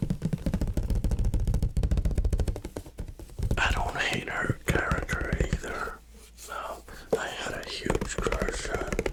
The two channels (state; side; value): identical; both; correlation 1.00